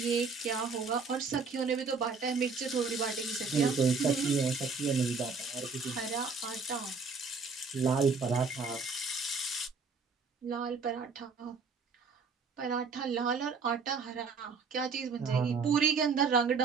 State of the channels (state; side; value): quieter; left; 4.9 dB